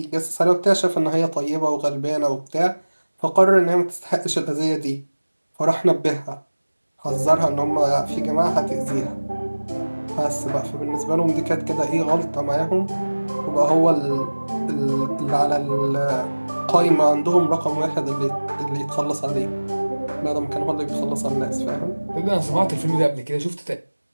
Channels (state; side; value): inverted; both; correlation -1.00